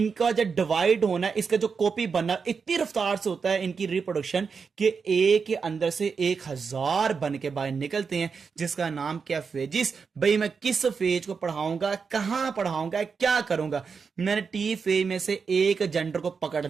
जो डिवाइड होना है, इसका जो कॉपी बनना इतनी रफ्तार से होता है इनकी रिप्रोडक्शन, कि एक के अंदर से 1000 बन के बाहर निकलते हैं, जिसका नाम क्या, फेजिस। भाई मैं किस फेज को पढ़ाऊंगा, कहां पढ़ाऊंगा, क्या करूंगा, मैंने टी फेज में से एक जेंडर को पकड़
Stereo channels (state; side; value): quieter; left; 5.5 dB